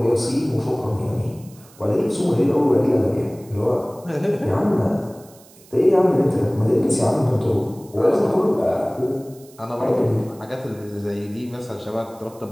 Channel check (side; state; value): right; noise; hiss, 25 dB below the sound